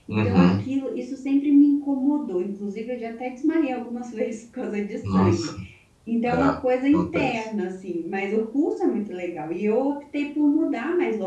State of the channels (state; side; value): identical; both; correlation 1.00